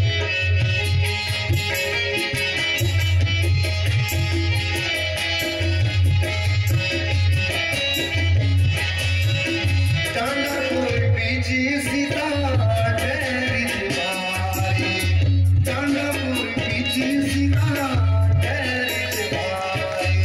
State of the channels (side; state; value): both; identical; correlation 1.00